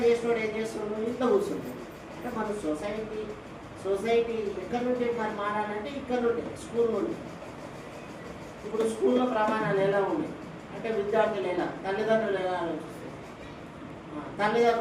చేసినోడు ఏం చేస్తున్నాడు, ఇంట్లో కూర్చుంటాడు. అంటే మన సొసైటీ ఎక్కడి నుండి మరి మారాలంటే ఇక్కడ నుండి, స్కూల్ నుండి. ఇప్పుడు స్కూల్లో ప్రమాణాలు ఎలా ఉన్నాయి అంటే విద్యార్థులు ఎలా, తల్లిదండ్రులు ఎలా ఆలోచిస్తారు.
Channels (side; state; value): both; identical; correlation 1.00